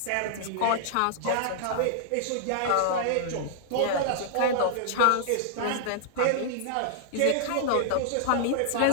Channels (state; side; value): different; both; correlation -0.01